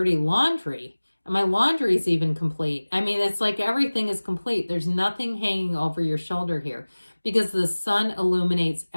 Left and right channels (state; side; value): inverted; both; correlation -1.00